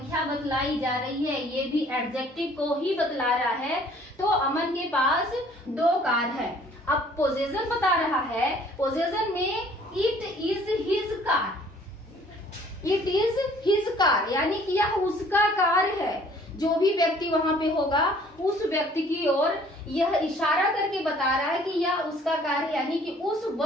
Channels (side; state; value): both; normal; correlation 0.56